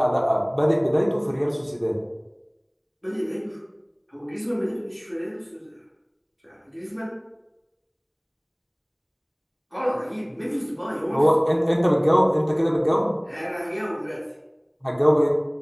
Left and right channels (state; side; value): identical; both; correlation 1.00